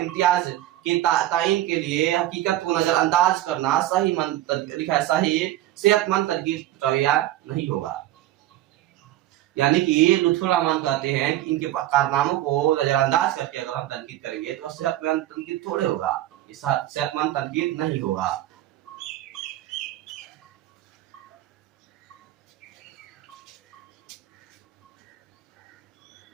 इम्तियाज के तायीन के लिए हकीकत को नजरअंदाज करना सही सेहतमंद तनकीद रवैया नहीं होगा। यानी कि लुत्फुर रहमान कहते हैं कि इनके कारनामों को नजरअंदाज करके अगर हम तनकीद करेंगे तो सेहतमंद तनकीद थोड़े होगा, सेहतमंद तनकीद नहीं होगा।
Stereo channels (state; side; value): quieter; left; 14.2 dB